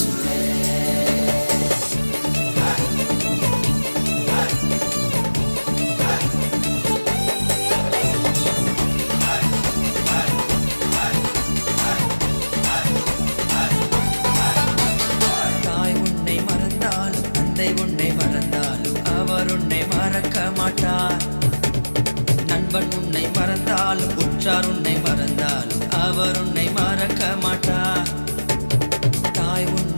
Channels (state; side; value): inverted; both; correlation -1.00